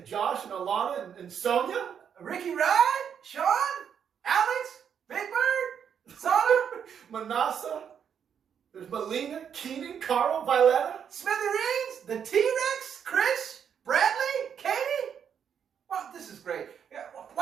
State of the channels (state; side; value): quieter; left; 7.9 dB